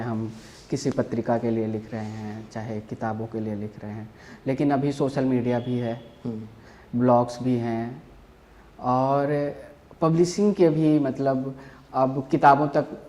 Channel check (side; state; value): both; identical; correlation 1.00